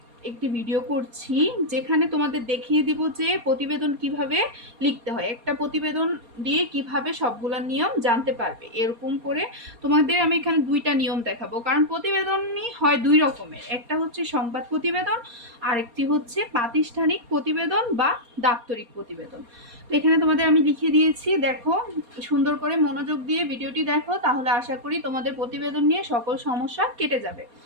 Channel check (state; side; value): late; left; 4.2 ms